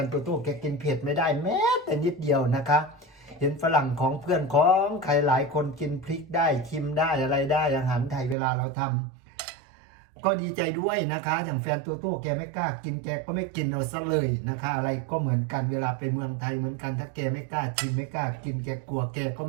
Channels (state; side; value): drops out; left; at 8.3 s